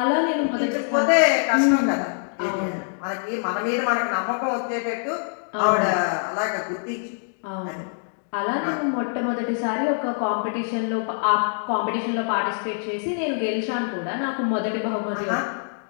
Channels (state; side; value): silent; right; 62 dB below the other